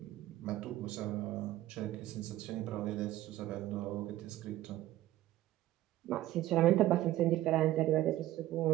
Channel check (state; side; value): quieter; left; 14.8 dB